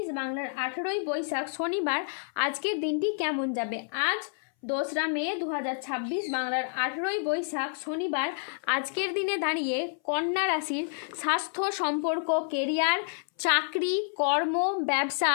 বাংলার 18ই বৈশাখ শনিবার আজকের দিনটি কেমন যাবে। আজ 2রা মে 2026 বাংলার 18ই বৈশাখ শনিবার আজকের দিনে দাঁড়িয়ে কন্যা রাশির স্বাস্থ্য, সম্পর্ক, কেরিয়ার, চাকরি, কর্ম, ব্যবসা,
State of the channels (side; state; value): right; silent; 59 dB below the other